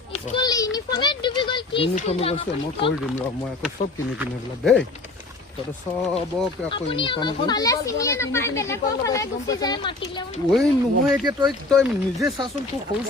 স্কুল ইউনিফৰ্মে ডুবি গ'ল কি ইউনিফৰ্ম গৈছে মই কৰি দিম ৰ মই আকৌ চব কিনি কিনি এইবিলাক দেই তহঁতে চবকে আকৌ ইউনিফৰ্ম ফালে চিনিয়ে নাপায় বেলেগৰ ফালে গুচি যায় মাতিলেও ঐ নহয় এতিয়া তই নিজে চাচোন তোৰ সৰু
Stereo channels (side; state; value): right; quieter; 3.1 dB